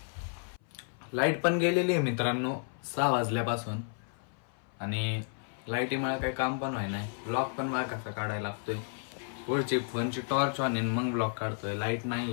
लाईट पण गेलेली आहे मित्रांनो 6 वाजल्यापासून. आणि लाईटीमुळे काही काम पण व्हाय नाही. ब्लॉग पण मला कसा काढायला लागतोय. पुढची फोनची टॉर्च ऑन मग ब्लॉग काढतोय. लाईट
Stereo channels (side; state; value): right; silent; 56 dB below the other